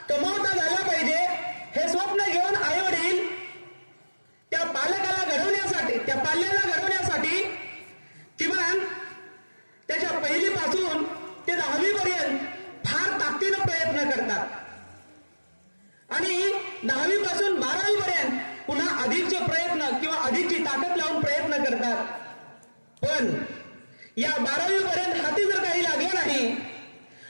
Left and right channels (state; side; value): inverted; both; correlation -1.00